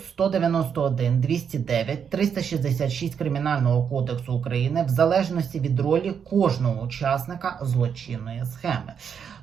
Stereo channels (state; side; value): quieter; left; 7.3 dB